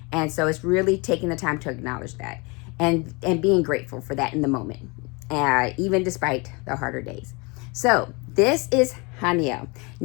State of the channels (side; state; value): right; quieter; 28.4 dB